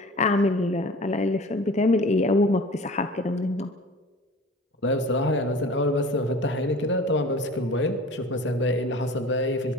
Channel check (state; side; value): normal; both; correlation 0.41